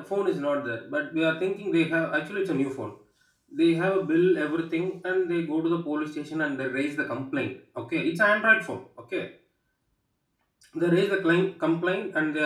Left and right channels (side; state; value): both; identical; correlation 1.00